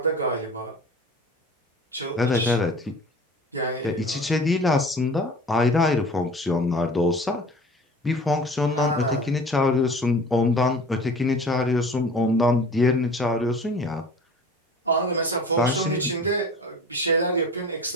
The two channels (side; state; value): both; normal; correlation 0.42